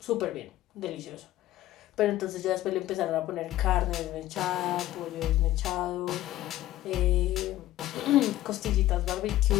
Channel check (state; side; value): quieter; right; 14.8 dB